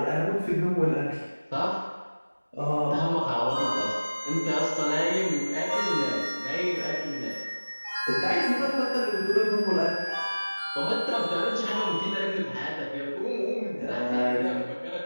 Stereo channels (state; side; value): inverted; both; correlation -1.00